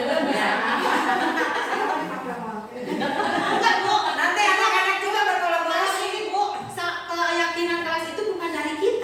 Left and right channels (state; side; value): identical; both; correlation 1.00